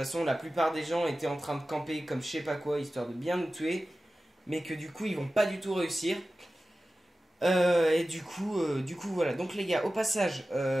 la plupart des gens étaient en train de camper comme je sais pas quoi histoire de bien nous tuer, mais que du coup ils vont pas du tout réussir. Et du coup voilà. Donc les gars, au passage,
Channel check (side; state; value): both; normal; correlation 0.95